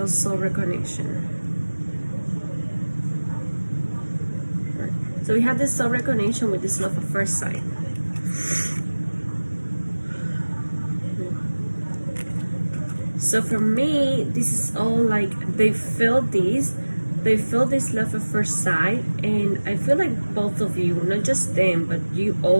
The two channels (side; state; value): both; inverted; correlation -1.00